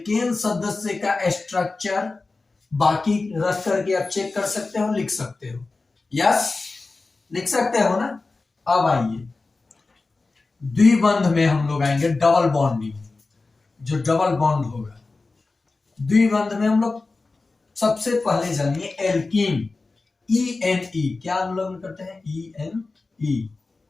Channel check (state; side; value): quieter; right; 3.7 dB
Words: सदस्य का स्ट्रक्चर बाकी रख करके आप चेक कर सकते हो, लिख सकते हो, यस लिख सकते हो ना। अब आइए द्विबंध में हम लोग आएंगे, डबल बॉन्डिंग, जो डबल बॉन्ड होगा द्विबंध में हम लोग सबसे पहले जानिए एल्कीन, ENE, क्या हम लोग करते हैं, ENE,